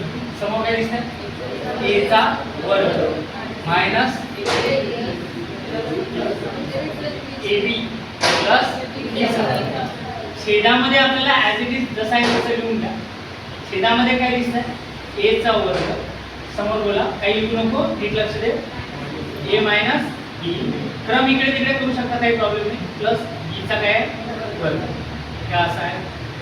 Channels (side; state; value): both; identical; correlation 1.00